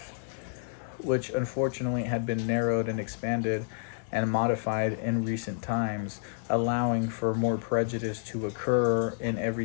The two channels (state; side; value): silent; right; 58 dB below the other